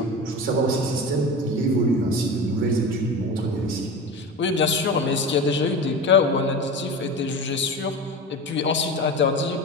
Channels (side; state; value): both; normal; correlation 0.29